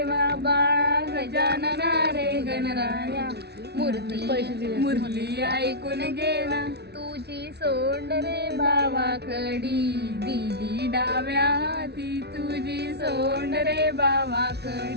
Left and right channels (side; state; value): left; late; 0.49 ms